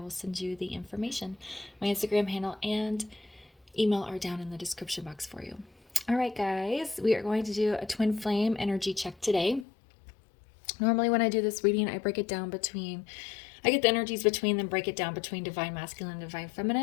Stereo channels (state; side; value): drops out; right; at 9.7 s